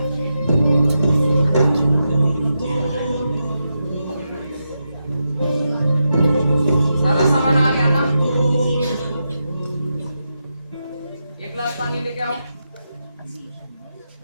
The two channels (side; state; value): both; inverted; correlation -0.87